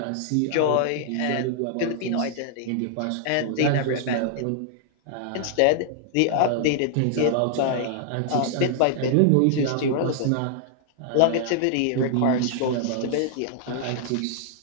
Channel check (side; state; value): both; different; correlation -0.01